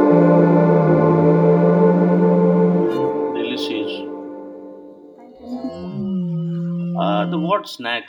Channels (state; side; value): identical; both; correlation 1.00